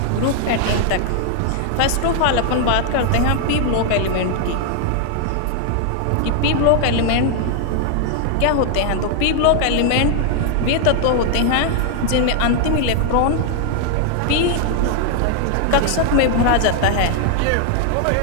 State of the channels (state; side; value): different; both; correlation 0.00